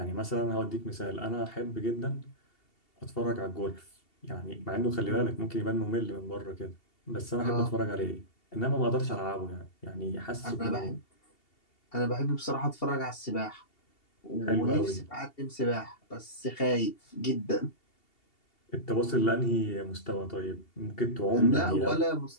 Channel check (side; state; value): right; late; 2.7 ms